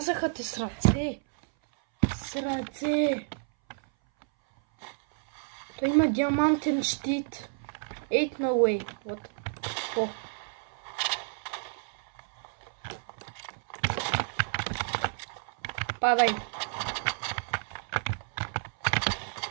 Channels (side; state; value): left; silent; 58 dB below the other